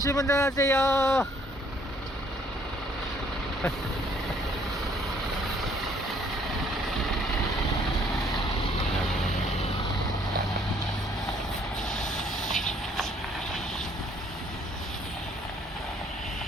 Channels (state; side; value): normal; both; correlation 0.63